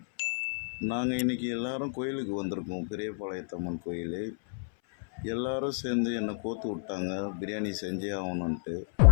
நாங்கள் இன்றைக்கி எல்லோரும் கோயிலுக்கு வந்திருக்கோம். பெரியபாளையத்தம்மன் கோயில். எல்லோரும் சேர்ந்து என்னை கோத்து விட்டாங்க, பிரியாணி செஞ்சே ஆகணுன்ட்டு.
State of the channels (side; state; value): right; silent; 57 dB below the other